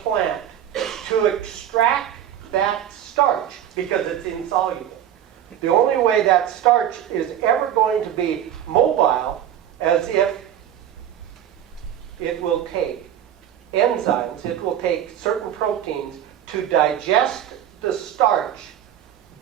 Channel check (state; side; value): quieter; left; 10.4 dB